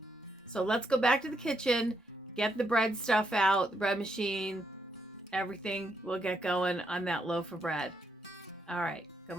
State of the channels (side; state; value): both; normal; correlation 0.78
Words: So let's go back to the kitchen. Get the bread stuff out, the bread machine, everything. We'll get going on that loaf of bread. All right,